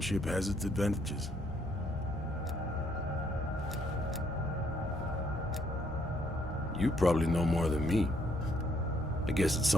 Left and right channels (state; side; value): normal; both; correlation 0.69